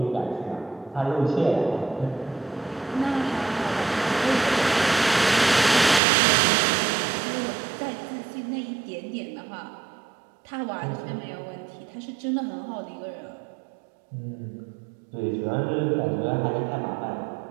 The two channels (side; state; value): left; drops out; at 6.0 s